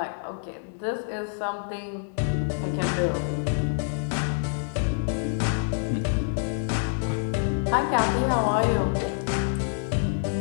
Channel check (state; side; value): silent; right; 58 dB below the other